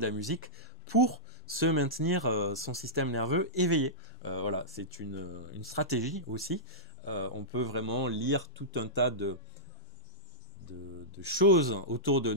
la musique pour se maintenir son système nerveux éveillé. Voilà, c'est une stratégie aussi. On peut vraiment lire tout un tas de choses autour de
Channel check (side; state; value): both; normal; correlation -0.14